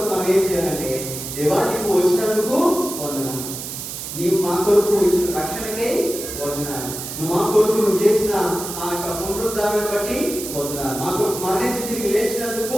మనం ఏం చేయాలంటే, దేవా నీవు వచ్చినందుకు వందనాలు, నీవు మా కొరకు ఇచ్చిన రక్షణకే వందనాలు, నువ్వు మా కొరకు నువ్వు చేసిన ఆ యొక్క పునరుద్ధారాన్ని బట్టి వందనాలు, మా కొరకు మరణించి తిరిగి లేచినందుకు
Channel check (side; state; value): right; noise; hiss, 8 dB below the sound